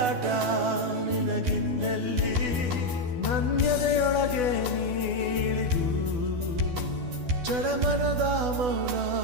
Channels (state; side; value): late; left; 12 ms